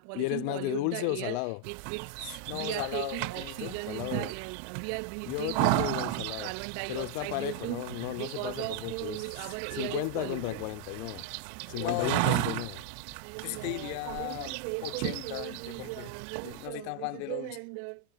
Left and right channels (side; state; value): both; different; correlation 0.00